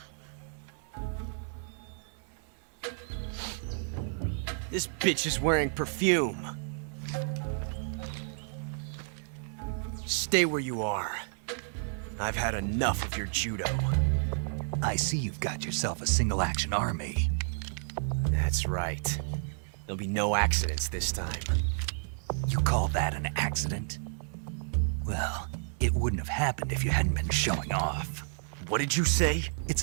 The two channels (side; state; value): left; silent; digital silence